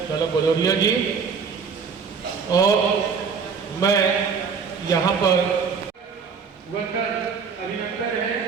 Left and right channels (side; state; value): left; quieter; 5.8 dB